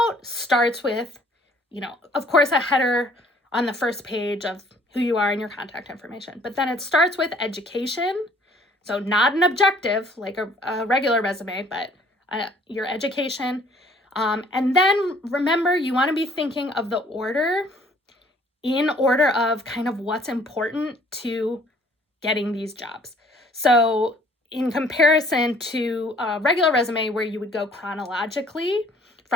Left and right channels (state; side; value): normal; both; correlation 0.58